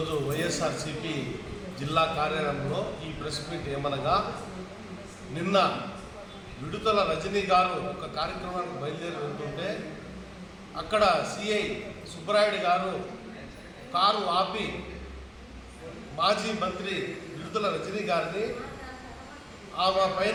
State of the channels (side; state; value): both; identical; correlation 1.00